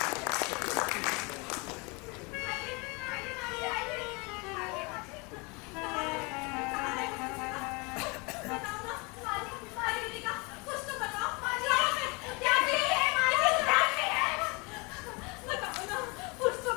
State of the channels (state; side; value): quieter; right; 28.7 dB